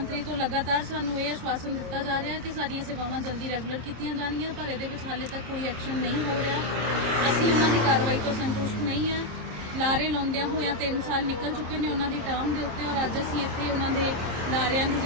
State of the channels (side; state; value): left; late; 26 ms